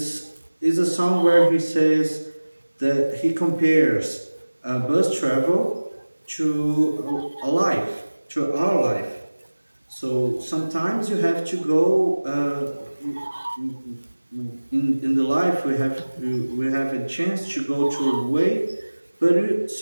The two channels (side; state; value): both; inverted; correlation -1.00